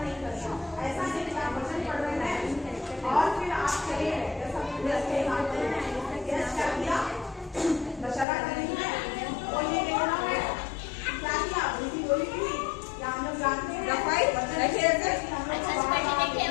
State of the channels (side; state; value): right; drops out; at 8.2 s